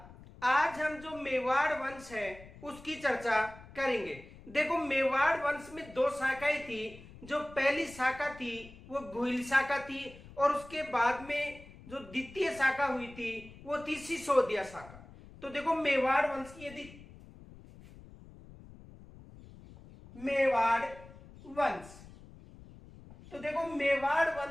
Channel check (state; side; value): noise; left; rumble, 19 dB below the sound